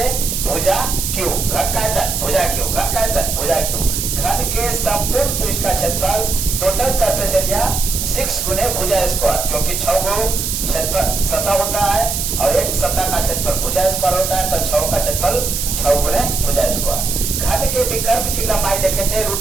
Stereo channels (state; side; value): noise; right; hiss, 2 dB below the sound